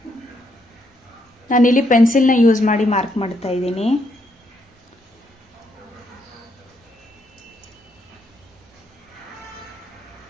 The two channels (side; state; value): both; normal; correlation 0.75